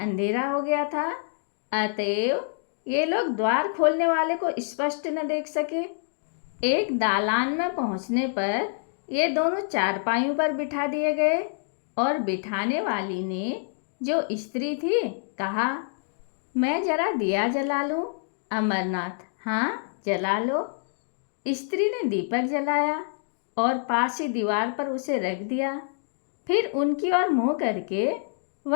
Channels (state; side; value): silent; right; digital silence